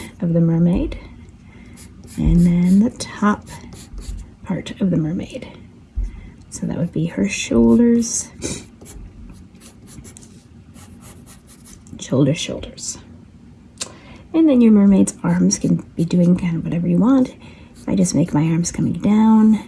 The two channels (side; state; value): both; identical; correlation 1.00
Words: of the mermaid and then the top part of the mermaid. So that would be her shoulders, shoulders. And then your mermaid's arms can be doing kind of whatever you want. If I just make my arms coming down,